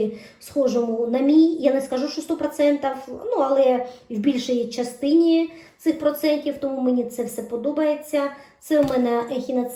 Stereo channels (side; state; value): both; identical; correlation 1.00